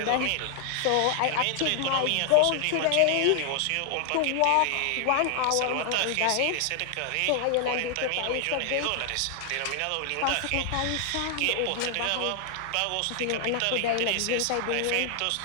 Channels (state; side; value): different; both; correlation 0.00